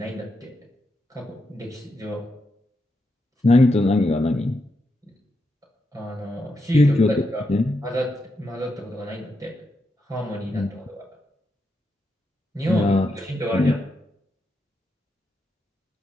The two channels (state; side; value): normal; both; correlation 0.84